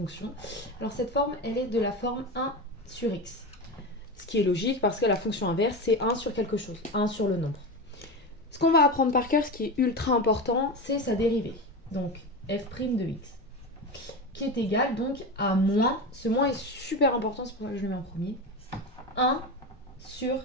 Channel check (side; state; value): both; normal; correlation 0.22